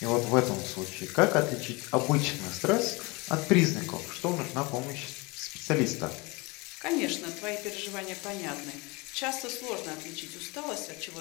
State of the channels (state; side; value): quieter; right; 25.8 dB